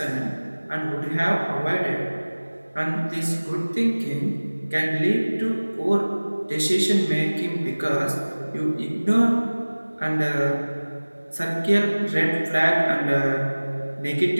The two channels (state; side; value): inverted; both; correlation -1.00